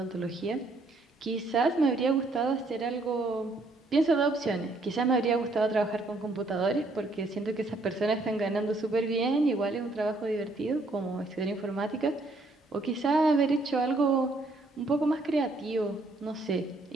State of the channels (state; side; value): quieter; left; 3.0 dB